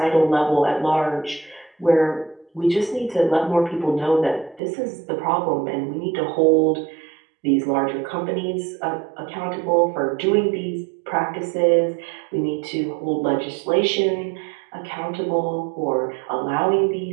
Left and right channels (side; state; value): left; drops out; at 4.6 s